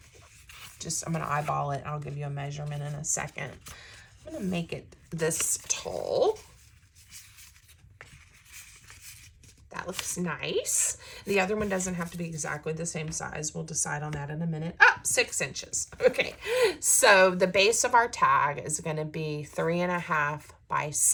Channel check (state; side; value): identical; both; correlation 1.00